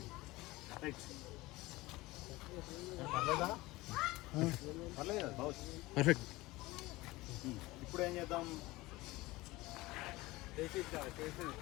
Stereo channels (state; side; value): quieter; right; 20.1 dB